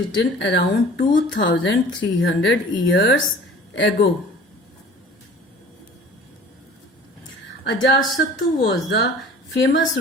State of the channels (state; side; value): normal; both; correlation 0.45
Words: around 2300 years ago. Ajatasattu was the famous